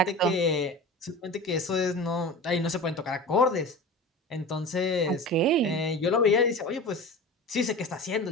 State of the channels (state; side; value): normal; both; correlation 0.33